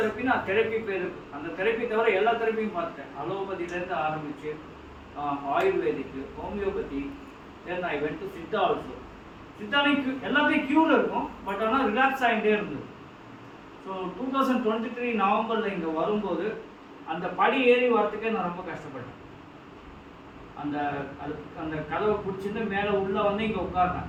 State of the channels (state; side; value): identical; both; correlation 1.00